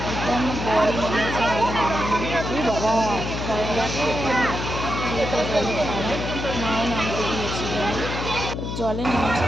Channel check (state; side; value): noise; left; hum, 4 dB below the sound